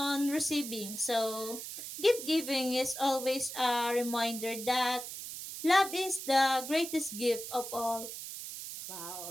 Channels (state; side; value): noise; right; hiss, 8 dB below the sound